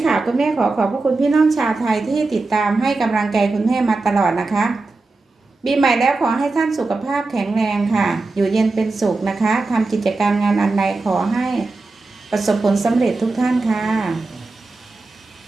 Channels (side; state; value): left; quieter; 3.5 dB